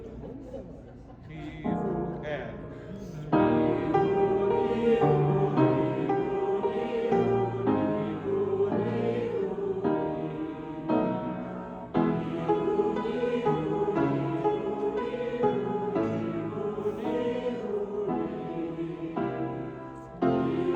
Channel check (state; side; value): identical; both; correlation 1.00